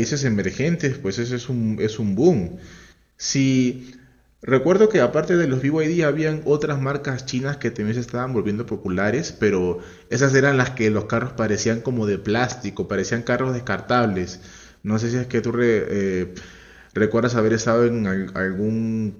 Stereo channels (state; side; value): identical; both; correlation 1.00